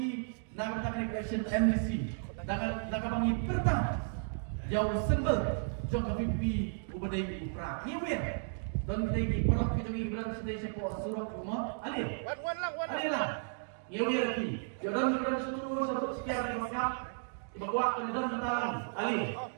nak bertanya election MDC, nak bangi pertama, jauh sembel, jauh ke VPP ubadai upra, nyiwir. Dan kita perlu kita berani sedih sebuah surat rumah, alih lah, nyewi lagi. Jangan berani satu sekian dari masyarakat, dibawa ke dalam tentang alih.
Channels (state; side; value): silent; left; digital silence